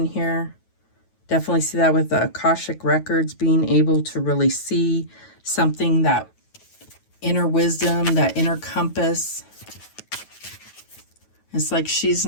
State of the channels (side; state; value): right; late; 9.3 ms